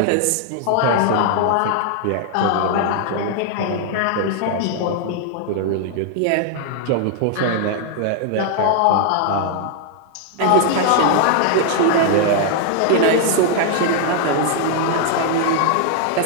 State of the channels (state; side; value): different; both; correlation 0.00